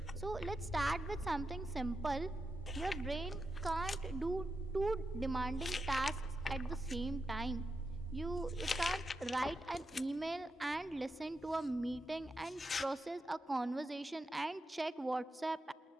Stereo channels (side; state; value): both; normal; correlation 0.87